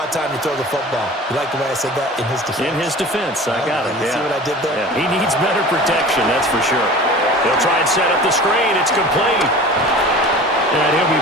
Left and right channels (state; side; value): normal; both; correlation 0.39